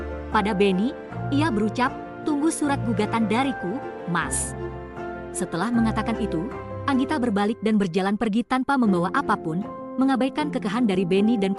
pada Benny, ia berucap, tunggu surat gugatan dariku, Mas. Setelah mengatakan itu, Anggita berbalik dan berjalan pergi tanpa membawa apapun, mengabaikan kekeh dari Benny dan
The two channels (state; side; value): identical; both; correlation 1.00